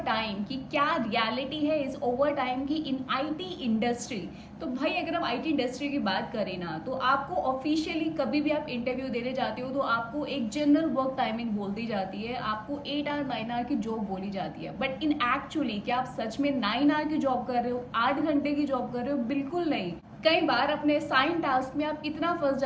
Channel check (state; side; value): identical; both; correlation 1.00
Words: टाइम की क्या रियलिटी है इस ओवर टाइम की इन आईटी इंडस्ट्री। तो भाई अगर हम आईटी इंडस्ट्री की बात करें ना, तो आपको ऑफिशियली कभी भी आप इंटरव्यू देने जाते हो तो आपको एक जनरल वर्क टाइमिंग बोल दी जाती है, आपको 8 आवर 9 आवर की जॉब बोली जाती है। बट इन एक्चुअली क्या आप सच में 9 आवर की जॉब कर रहे हो, 8 घंटे की जॉब कर रहे हो? बिल्कुल नहीं। कई बार अपने साइन टास्क में आप इतना फंस